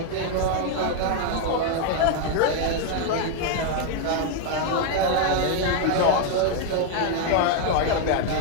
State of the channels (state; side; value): different; both; correlation 0.00